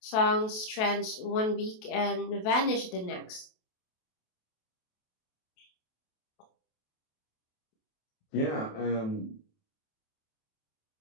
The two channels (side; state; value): right; late; 28 ms